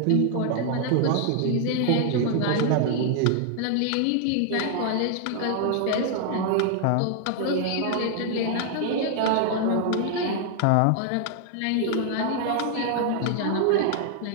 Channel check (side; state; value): both; different; correlation 0.00